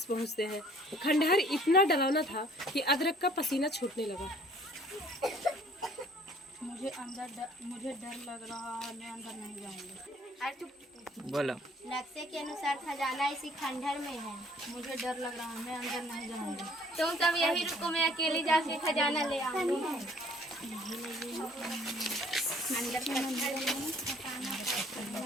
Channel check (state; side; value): normal; both; correlation 0.57